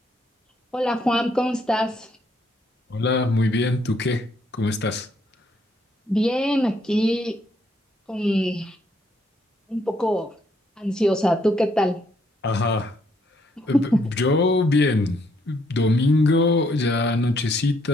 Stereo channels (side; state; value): both; normal; correlation 0.71